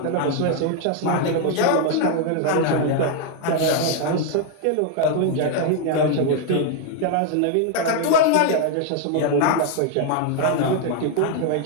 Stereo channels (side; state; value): both; different; correlation 0.00